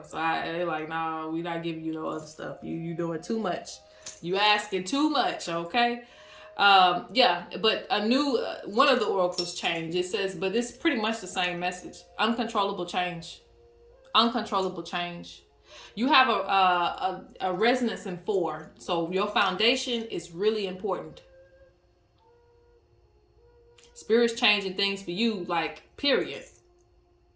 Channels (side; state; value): both; identical; correlation 1.00